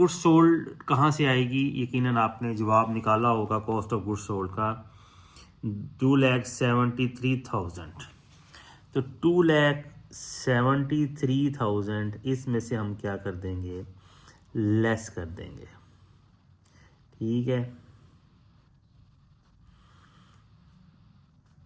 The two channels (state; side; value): identical; both; correlation 1.00